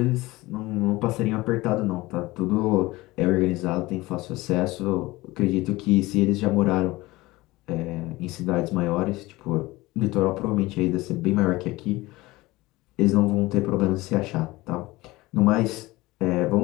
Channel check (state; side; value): quieter; right; 20.1 dB